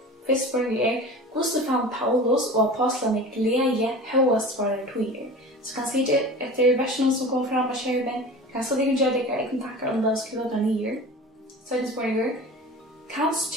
Först spurningen hur fann Paulus och apostlarna glädje högast svara till. Så kan se det efter versen som kommer fram av skärmen. Kanske de kan göra det i kontakter om det skulle vara ner. Så är det spurningar. Kanst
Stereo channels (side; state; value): both; normal; correlation 0.36